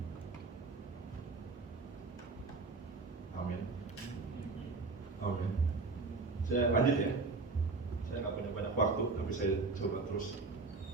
Amin. Amin. Saya lanjut ya. Saya nggak punya banyak waktu, tapi saya coba terus.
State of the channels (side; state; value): left; quieter; 3.8 dB